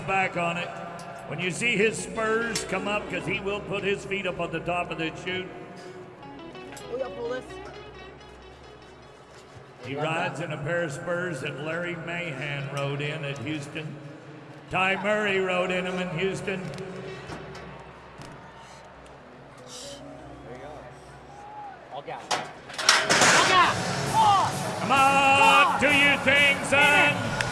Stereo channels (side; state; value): both; identical; correlation 1.00